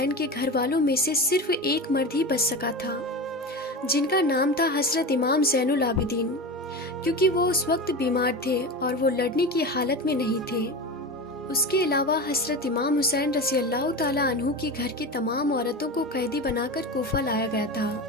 کے گھر والوں میں سے صرف ایک مرد ہی بچ سکا تھا، جن کا نام تھا حضرت امام زین العابدین، کیونکہ وہ اس وقت بیمار تھے اور وہ لڑنے کی حالت میں نہیں تھے۔ اس کے علاوہ حضرت امام حسین رضی اللہ تعالیٰ عنہ کے گھر کی تمام عورتوں کو قیدی بنا کر کوفہ لایا گیا تھا۔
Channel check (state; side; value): normal; both; correlation 0.26